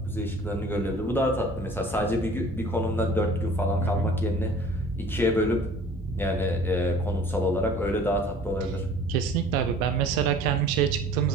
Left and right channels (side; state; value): both; normal; correlation 0.48